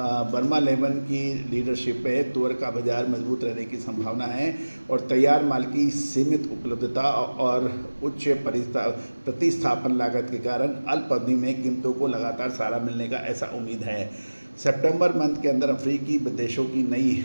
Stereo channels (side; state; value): both; inverted; correlation -1.00